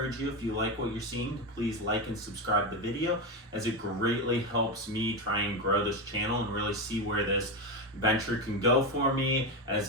you, if you like what you're seeing, to please like and subscribe the video, as it greatly helps me try and grow this channel and really see where this venture can go for me as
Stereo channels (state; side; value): normal; both; correlation 0.14